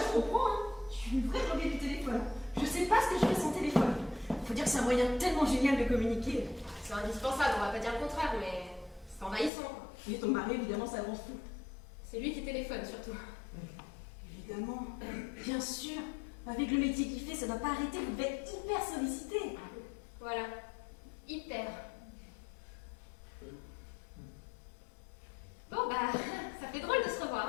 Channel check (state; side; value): drops out; right; at 9.5 s